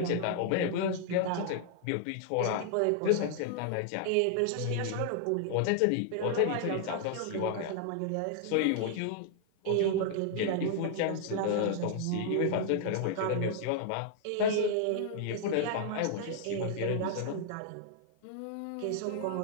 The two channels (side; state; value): both; different; correlation -0.01